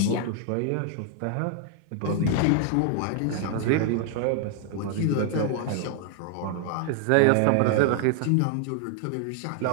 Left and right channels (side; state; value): both; different; correlation 0.00